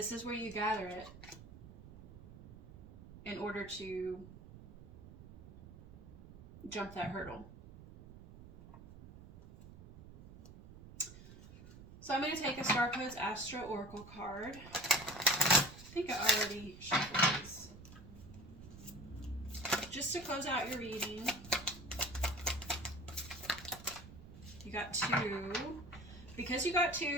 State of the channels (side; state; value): right; noise; rumble, 17 dB below the sound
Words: is where you gather it in order to jump that hurdle. So I'm going to take a Star Codes Astro Oracle card. I think I already shuffled these. Just to close out your reading, you got two. Because you got